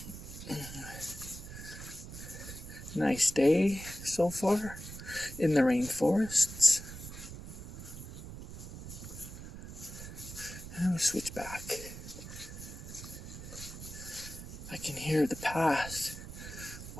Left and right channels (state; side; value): noise; right; rumble, 11 dB below the sound